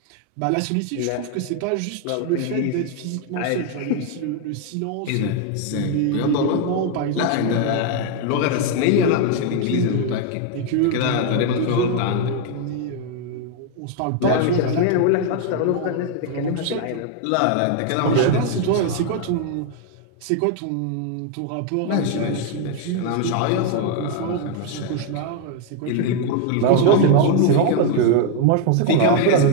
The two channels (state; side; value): different; both; correlation 0.01